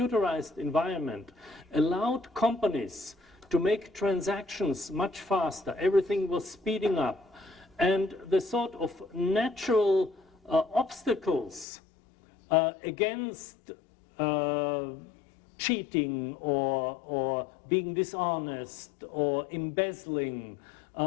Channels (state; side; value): drops out; right; at 11.7 s